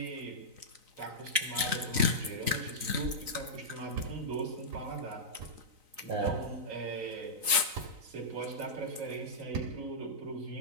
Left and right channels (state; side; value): late; left; 3.9 ms